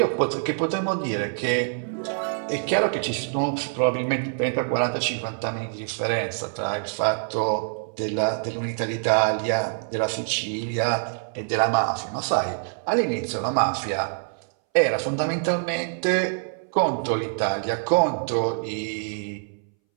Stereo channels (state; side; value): silent; left; 62 dB below the other